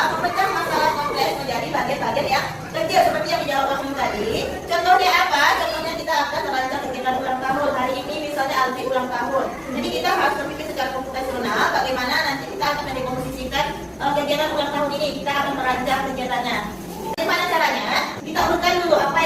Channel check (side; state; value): both; identical; correlation 1.00